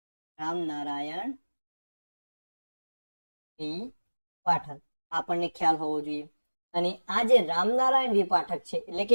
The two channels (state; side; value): inverted; both; correlation -1.00